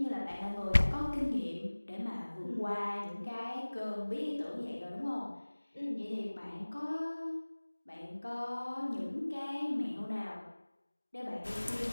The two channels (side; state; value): both; inverted; correlation -1.00